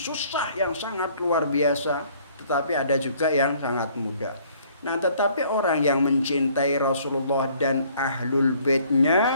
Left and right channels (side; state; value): both; inverted; correlation -0.59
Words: yang sangat luar biasa, tetapi ada juga yang sangat mudah. Nah, tetapi orang yang mencintai Rasulullah dan Ahlul